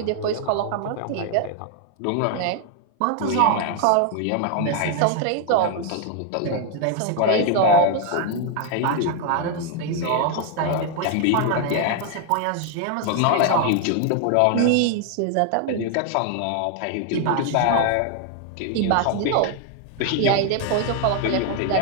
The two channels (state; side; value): different; both; correlation 0.00